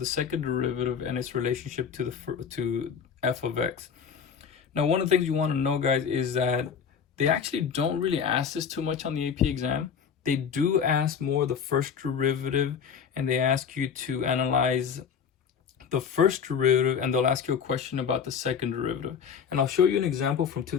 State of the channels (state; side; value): quieter; right; 7.0 dB